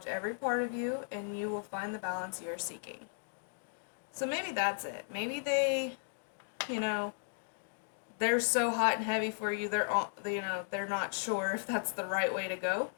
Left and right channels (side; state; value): right; silent; digital silence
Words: every part of you, and you will find the balance you're seeking. So maybe that's it. Maybe they, they're so hot and heavy for you, they're not sure if that's the right way to go.